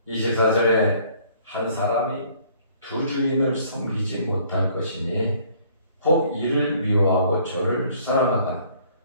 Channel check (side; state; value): both; inverted; correlation -0.59